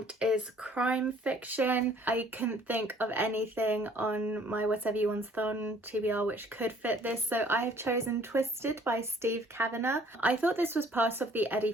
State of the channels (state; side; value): normal; both; correlation 0.57